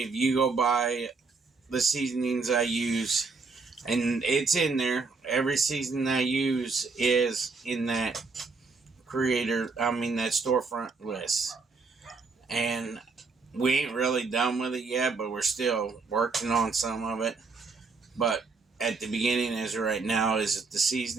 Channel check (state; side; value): quieter; left; 4.4 dB